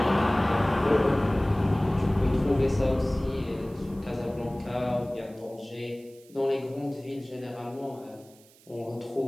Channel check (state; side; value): noise; right; hiss, 27 dB below the sound